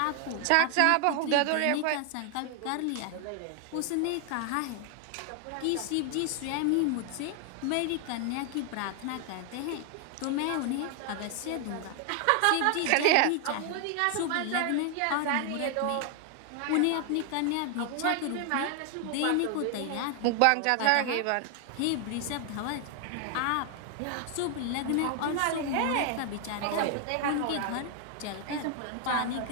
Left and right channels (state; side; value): different; both; correlation 0.00